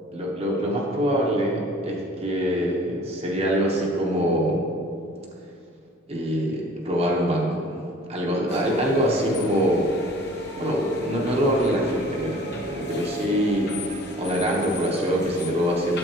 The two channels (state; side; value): normal; both; correlation 0.49